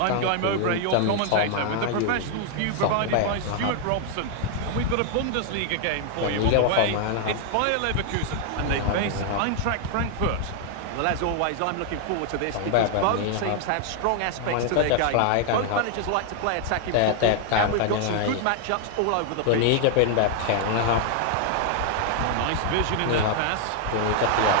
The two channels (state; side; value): different; both; correlation 0.00